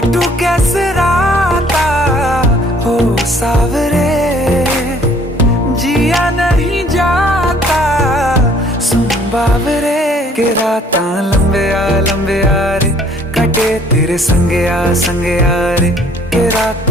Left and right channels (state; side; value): normal; both; correlation 0.59